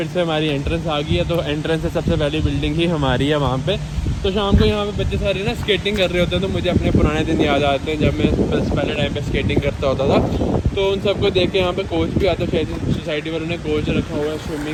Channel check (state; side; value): identical; both; correlation 1.00